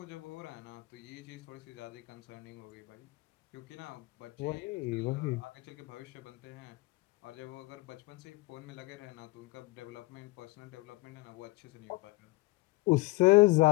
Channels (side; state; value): right; quieter; 22.4 dB